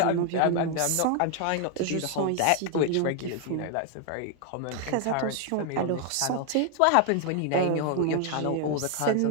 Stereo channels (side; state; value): both; different; correlation 0.00